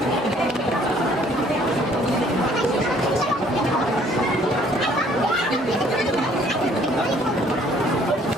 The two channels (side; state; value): both; normal; correlation 0.60